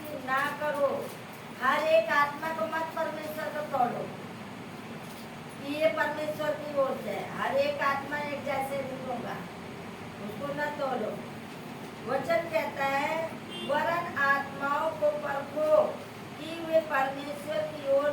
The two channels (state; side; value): identical; both; correlation 1.00